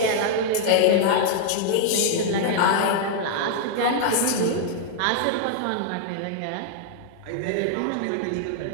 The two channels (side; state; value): both; different; correlation -0.01